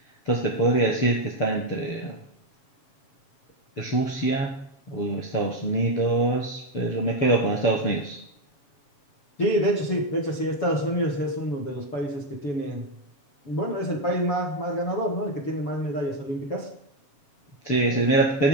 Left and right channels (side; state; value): right; late; 7.2 ms